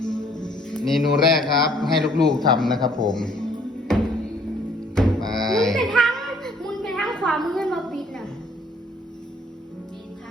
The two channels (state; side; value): normal; both; correlation 0.61